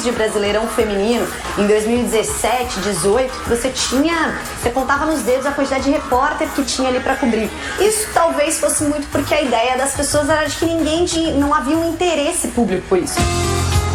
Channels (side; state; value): both; identical; correlation 1.00